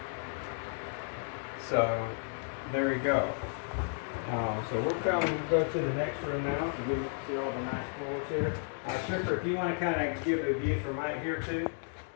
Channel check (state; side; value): silent; right; 56 dB below the other